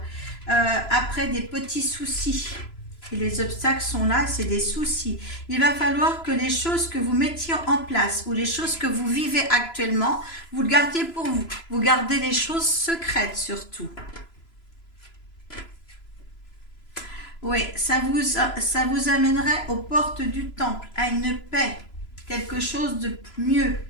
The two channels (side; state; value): right; late; 3.0 ms